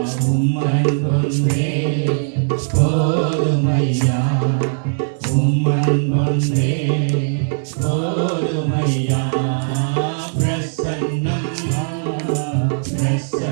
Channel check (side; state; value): left; silent; digital silence